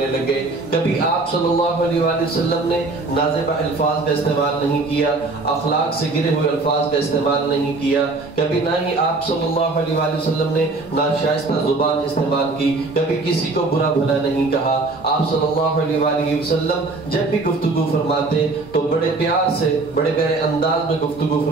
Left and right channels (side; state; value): left; quieter; 3.5 dB